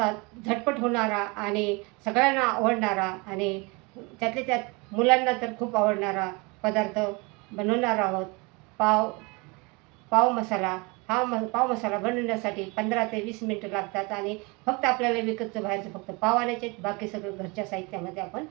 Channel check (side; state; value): left; quieter; 28.1 dB